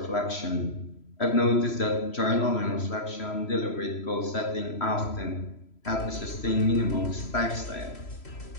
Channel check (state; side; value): late; right; 3.0 ms